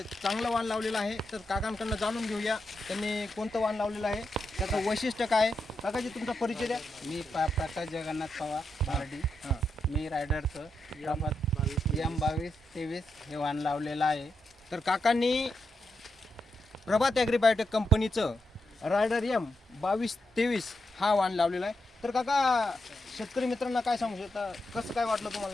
चांगलं वाण लावलेलं आहे। तर काकांकडनं जाणून घेऊया त्यांनी कोणतं वाण लावलेलं आहे, त्याचं वैशिष्ट्य काय। काकाजी तुमचा परिचय द्या। मी प्रकाश जगन्नाथ पवार बार्डी। मी रायडरचं M2223 हे वाण लावलेलं आहे। तर काकांनी प्रभात ॲग्रीबायोटेक कंपनीचं रायडर M2223 हा वाण लावलेला आहे। तर काका शेतकरी मित्रांना काय सांगू शकता, कसं काय वाटलं तुम्हाला?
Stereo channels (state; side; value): normal; both; correlation 0.84